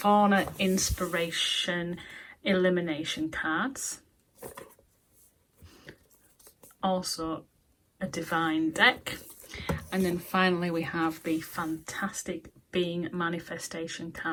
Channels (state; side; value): identical; both; correlation 1.00